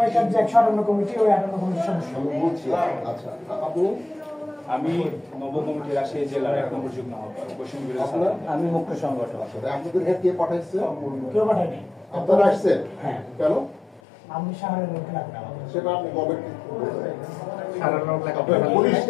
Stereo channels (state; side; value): drops out; right; at 14.0 s